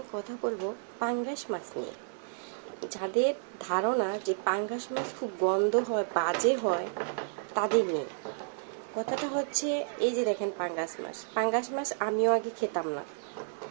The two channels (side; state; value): left; silent; digital silence